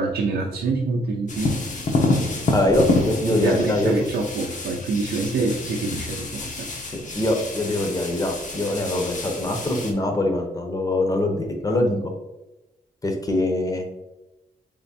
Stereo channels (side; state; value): both; normal; correlation 0.66